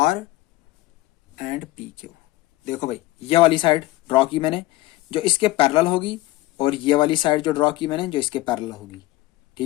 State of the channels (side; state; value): right; quieter; 18.1 dB